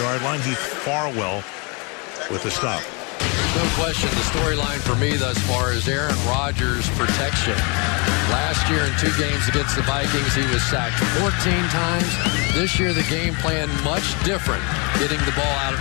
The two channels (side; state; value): right; quieter; 31.6 dB